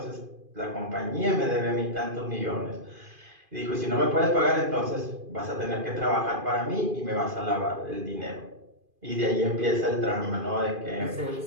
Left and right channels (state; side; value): late; left; 2.5 ms